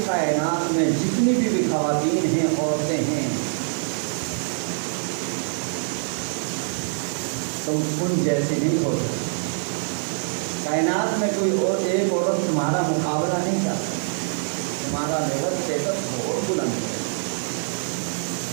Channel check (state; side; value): silent; left; digital silence